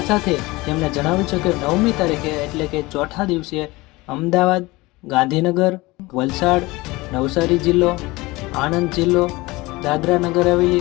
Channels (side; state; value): right; quieter; 21.8 dB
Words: સાથે તેમણે જણાવ્યું છે કે 9મી તારીખે એટલે કે ચોથા દિવસે અમદાવાદ, ગાંધીનગર, વલસાડ, નવસારી જિલ્લો, આણંદ જિલ્લો, દાદરા નગર હવેલી